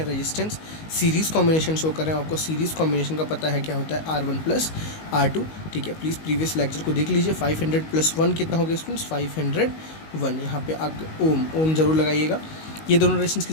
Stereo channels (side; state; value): right; late; 19 ms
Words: रेजिस्टेंस सीरीज़ कॉम्बिनेशन शो कर रहे हैं। आपको सीरीज़ कॉम्बिनेशन का पता है क्या होता है, R1 + R2। ठीक है, प्लीज़ प्रीवियस लेक्चर को देख लीजिए। 500 + 1 कितना हो गया स्टूडेंट्स, 501। यहाँ पे आप ओम जरूर लगाइएगा। ये दोनों रेजिस्टेंस